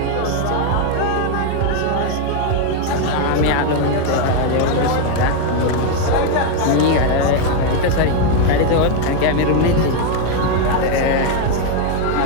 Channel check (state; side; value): different; both; correlation 0.01